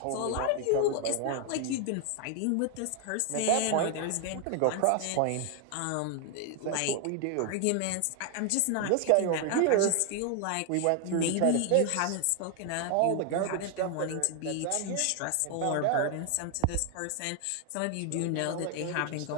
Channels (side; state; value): both; different; correlation 0.00